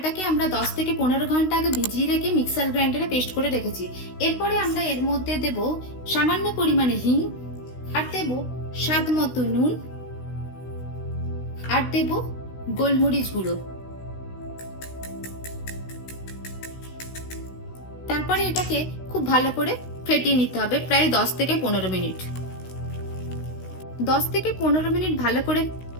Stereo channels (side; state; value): right; late; 16 ms